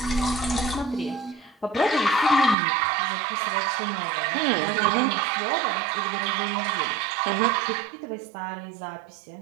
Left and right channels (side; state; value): left; drops out; at 2.6 s